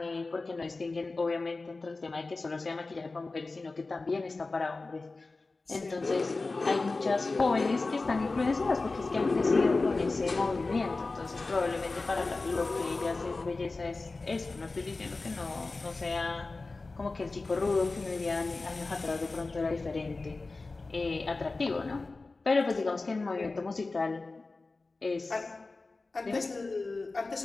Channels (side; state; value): right; quieter; 3.5 dB